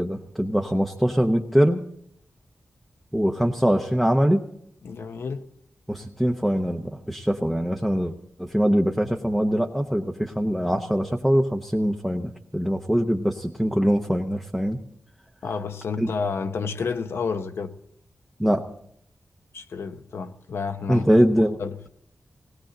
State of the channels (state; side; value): normal; both; correlation 0.97